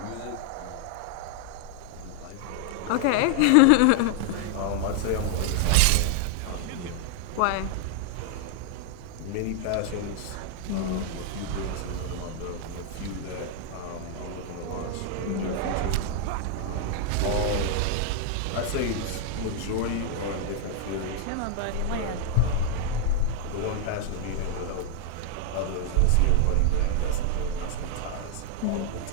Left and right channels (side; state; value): both; different; correlation 0.00